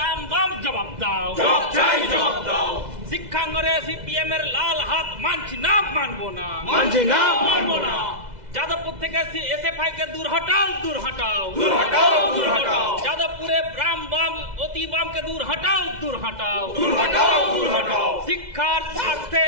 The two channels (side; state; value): left; late; 2.0 ms